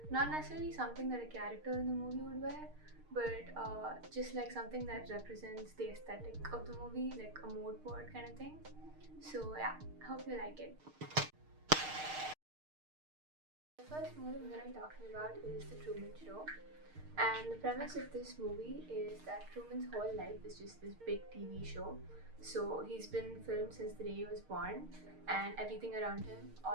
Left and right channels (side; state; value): left; late; 6.5 ms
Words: Not necessarily something that a character in the movie would wear, but just like something that represents the aesthetic of the movie, like a mood board kind of thing. So yeah, I hope you like it. The first movie I'm going to be talking about is The Truman Show. And the premise of this movie is that Truman's whole life is just this big TV show. So he's been filmed since the day he was born, and everything around him,